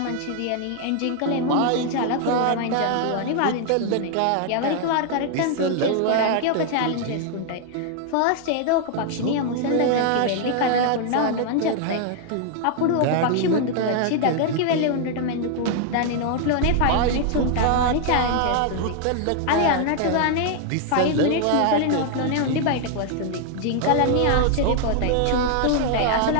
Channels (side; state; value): both; different; correlation 0.00